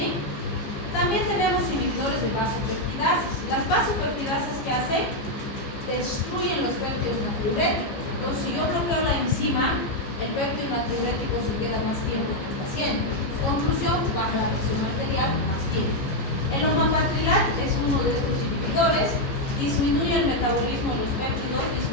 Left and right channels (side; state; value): right; late; 15 ms